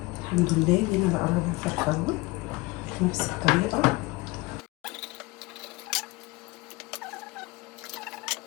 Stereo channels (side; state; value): right; quieter; 23.0 dB